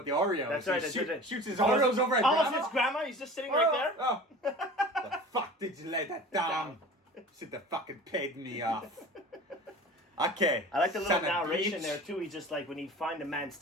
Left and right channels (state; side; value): normal; both; correlation 0.39